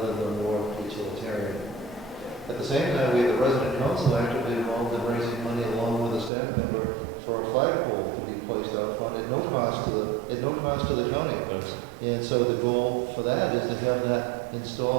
than the more utilitarian. At the same time, we have the resident council actively involved in raising money along with a staff member for a flagpole to be placed out front at no cost to the county. And so the goal for that is to have that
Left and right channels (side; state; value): left; drops out; at 6.3 s